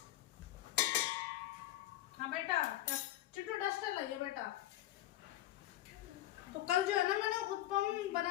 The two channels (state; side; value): quieter; right; 14.8 dB